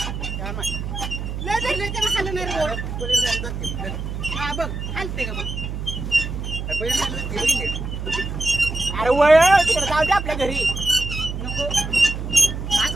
अरे वळ तिकडे जाऊ दे आपल्या घरी नको आज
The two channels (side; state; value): right; noise; hum, 5 dB below the sound